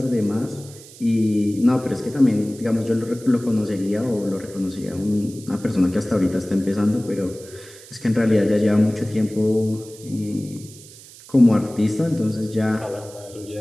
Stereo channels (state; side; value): noise; right; hiss, 19 dB below the sound